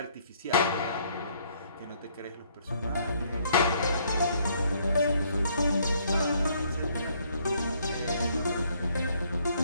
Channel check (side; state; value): both; inverted; correlation -0.66